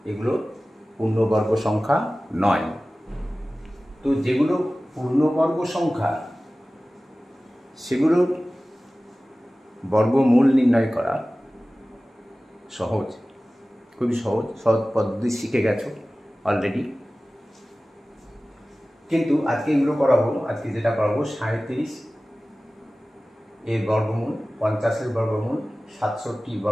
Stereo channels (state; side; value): normal; both; correlation 0.97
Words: এগুলো পূর্ণবর্গ সংখ্যা নয়। তো যেগুলো পূর্ণবর্গ সংখ্যা সেগুলোর বর্গমূল নির্ণয় করা সহজ, খুবই সহজ পদ্ধতি শিখে গেছো অলরেডি। কিন্তু আজকে এগুলো করাবো, আজকে যেটা করাবো 37 এর বর্গমূল, 50 এর বর্গমূল, 67